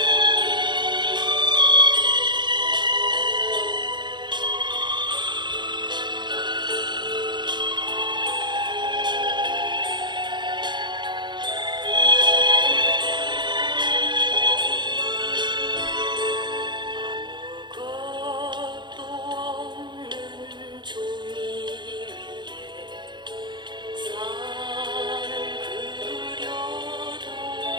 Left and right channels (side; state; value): left; late; 0.22 ms